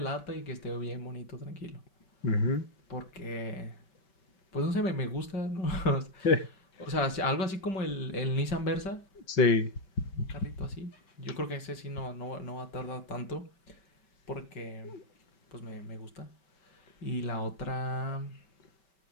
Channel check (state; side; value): late; right; 5.3 ms